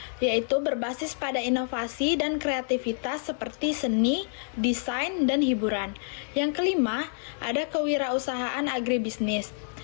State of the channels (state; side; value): silent; right; 59 dB below the other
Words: yaitu berbasis pada inovasi dan kreativitas seperti seni, desain, dan hiburan. Yang kelima, ada kewirausahaan agribisnis,